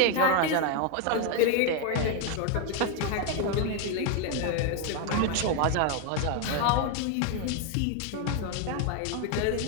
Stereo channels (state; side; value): different; both; correlation 0.01